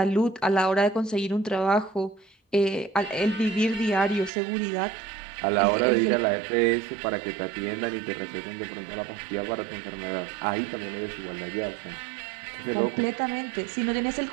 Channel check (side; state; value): left; drops out; at 4.3 s